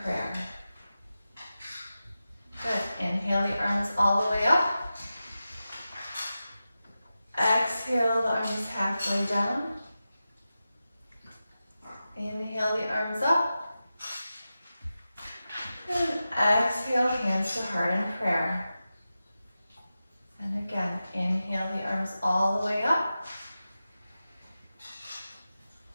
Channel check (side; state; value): both; inverted; correlation -0.93